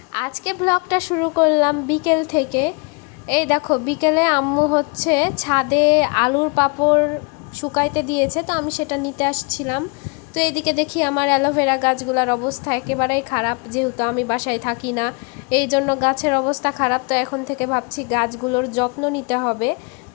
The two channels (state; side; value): quieter; right; 32.9 dB